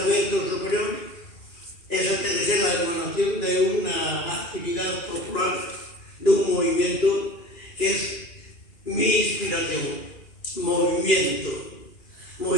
superior, esa tiene que ser la emanación de una actividad popular, de un movimiento que es mi inspiración. Movimiento,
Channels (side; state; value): right; late; 2.4 ms